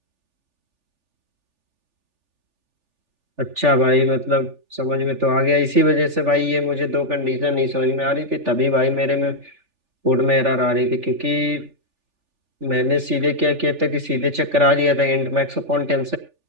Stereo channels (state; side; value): late; left; 3.4 ms